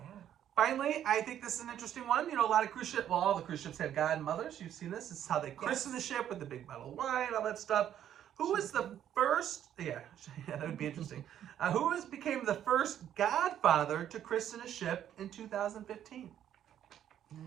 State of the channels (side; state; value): left; quieter; 10.5 dB